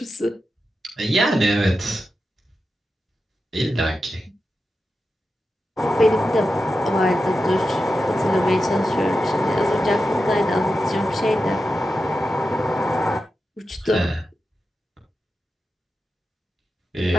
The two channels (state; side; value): normal; both; correlation 0.90